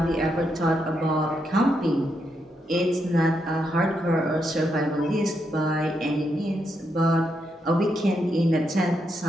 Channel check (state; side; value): normal; both; correlation 0.81